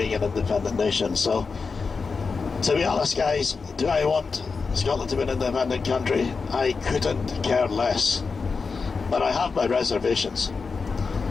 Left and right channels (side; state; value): right; quieter; 4.8 dB